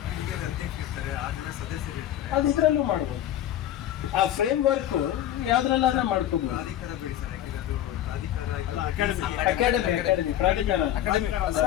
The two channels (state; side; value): quieter; right; 11.9 dB